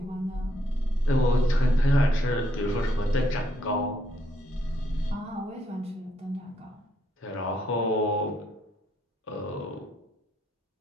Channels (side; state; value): both; normal; correlation 0.74